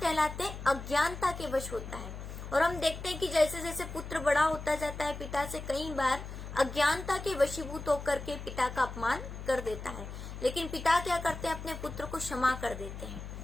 हैं? अज्ञानता के वश होता है। और हम देखते हैं कि जैसे जैसे पुत्र बड़ा होता जाता है पिता से, कई बार अज्ञानता के वशीभूत होकर के पिता का अपमान कर देता है, लेकिन पिता क्या करते हैं? अपने पुत्र को क्षमा कर देते हैं।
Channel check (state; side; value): noise; left; hum, 9 dB below the sound